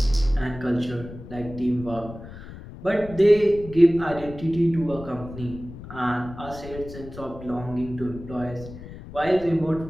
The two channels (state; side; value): noise; left; rumble, 14 dB below the sound